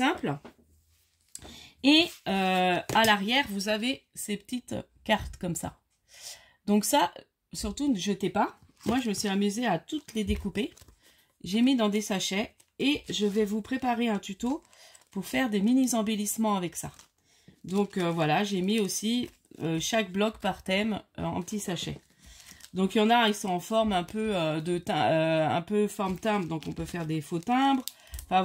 Et à l'arrière, vous avez ces petites cartes comme ça. Donc ça, surtout ne jetez pas. Moi, je me suis amusée à toutes les découper. J'ai mis dans des sachets et je vais vous préparer un tuto pour faire des mini embellissements avec ça. Donc voilà, j'ai mis aussi chaque bloc par thème en petits sachets. Donc il y en a, ils sont en forme un peu un peu forme timbre, donc on peut faire des faux timbres. Enfin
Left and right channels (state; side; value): identical; both; correlation 1.00